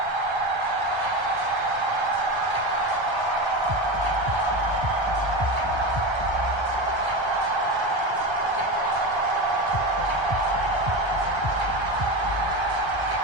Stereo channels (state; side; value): late; left; 1.3 ms